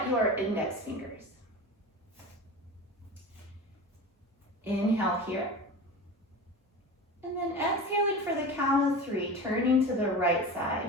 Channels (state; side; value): normal; both; correlation 0.31